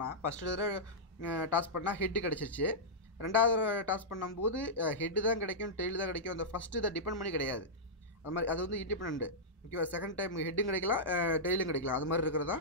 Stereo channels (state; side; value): normal; both; correlation -0.11